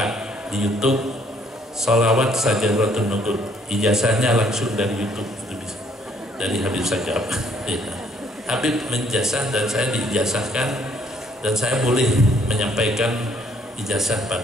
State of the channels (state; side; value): normal; both; correlation 0.65